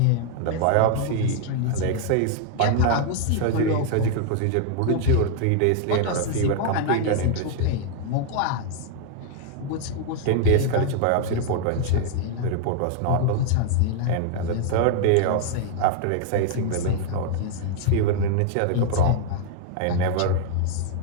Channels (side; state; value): both; different; correlation 0.00